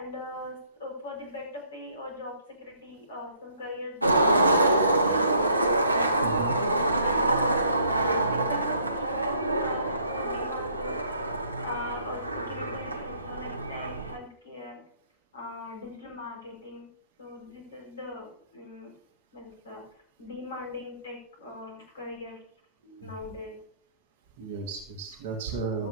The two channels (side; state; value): both; inverted; correlation -0.64